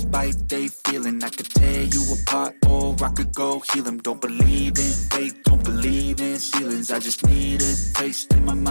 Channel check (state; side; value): inverted; both; correlation -1.00